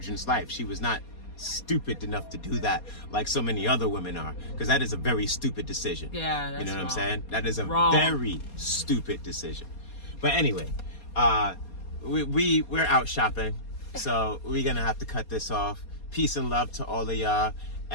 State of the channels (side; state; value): right; late; 4.2 ms